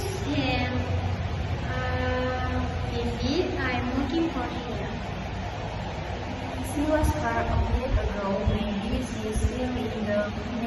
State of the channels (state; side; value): identical; both; correlation 1.00